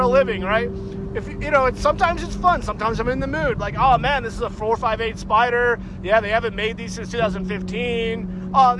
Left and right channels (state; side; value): identical; both; correlation 1.00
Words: living, right? If you know, sometimes it's fun. Sometimes I'm in the mood. Like, oh man, this is a 458 Spider. Yeah, they haven't made these since 2015. Oh,